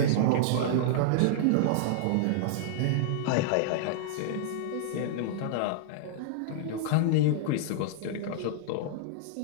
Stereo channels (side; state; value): both; different; correlation -0.02